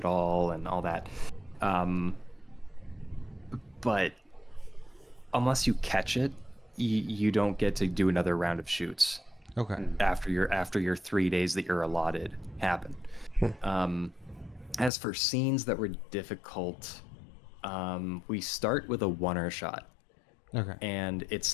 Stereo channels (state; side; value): drops out; right; at 14.9 s